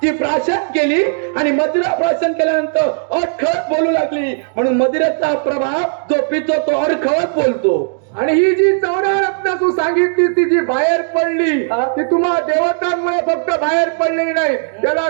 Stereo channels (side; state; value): left; silent; digital silence